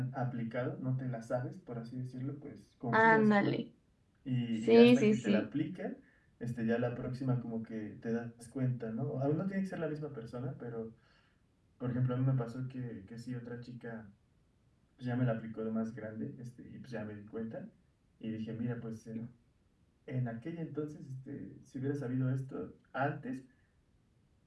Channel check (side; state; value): both; identical; correlation 1.00